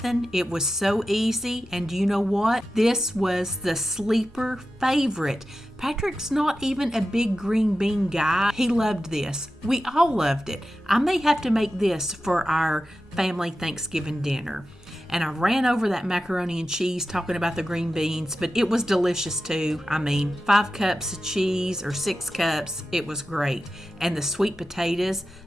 It was so easy, and you know what? This was the sleeper favorite. Patrick's not even a big green bean guy. He loved this. We all loved it. I may have to make this for our family Thanksgiving dinner. And I ran over that macaroni and cheese talking about the green beans, but it was delicious too. I mean, 5 cups of cheese or 6 cups, it was great. And the sweet potatoes,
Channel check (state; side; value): normal; both; correlation 0.92